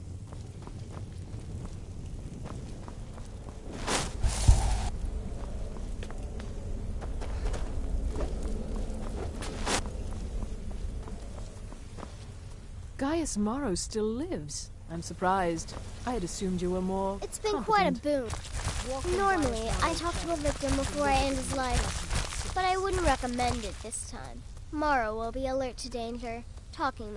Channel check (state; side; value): identical; both; correlation 1.00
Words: Gaius Maro still lives. I'm surprised. I had assumed you were more It's been competent. quite a boon. Normally, I talk to a victim before I end his life, but I wouldn't recommend it this time. Maro will be alert to danger. Talking